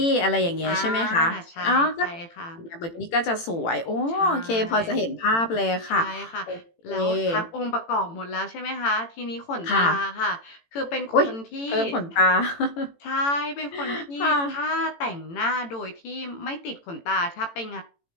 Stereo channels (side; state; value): right; late; 18 ms